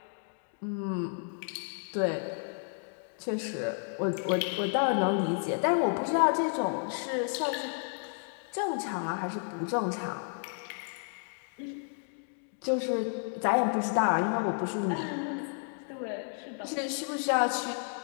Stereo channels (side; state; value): right; silent; 57 dB below the other